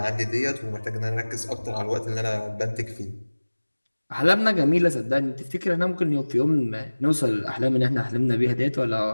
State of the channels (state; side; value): inverted; both; correlation -1.00